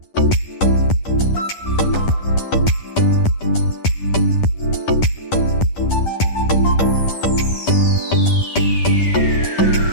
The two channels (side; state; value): right; late; 10 ms